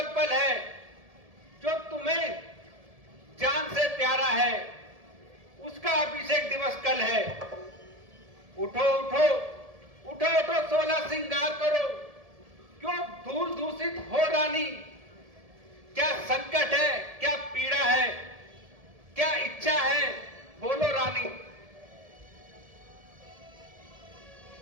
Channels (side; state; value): left; late; 1.7 ms